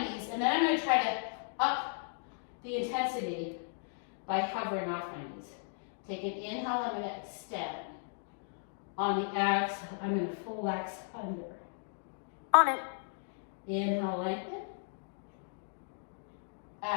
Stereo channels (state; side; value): silent; right; digital silence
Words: knees, and then I'm going to try to up the intensity by hovering off my knees. Take an inhale, I'm going to extend. On the exhale, I'm going to flex under. On it. Inhale, lengthen.